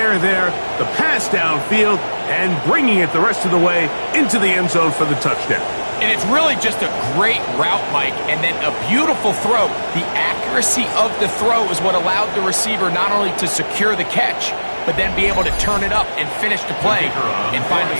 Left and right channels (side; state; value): both; inverted; correlation -1.00